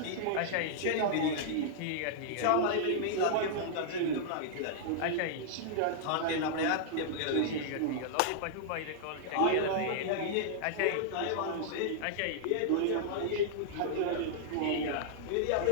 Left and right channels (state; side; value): different; both; correlation -0.01